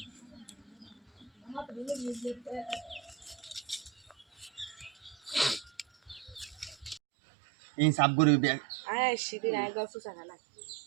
এই সাব গরি ব্যাগ আয় সিদিন আয় গল্প জানা না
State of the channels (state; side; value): drops out; left; at 7.0 s